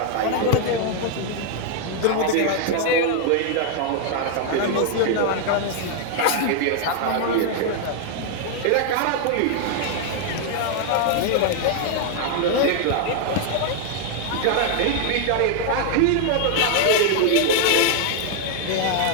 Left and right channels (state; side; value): different; both; correlation 0.00